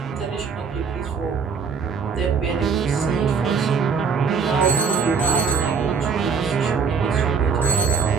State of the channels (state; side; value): quieter; left; 5.8 dB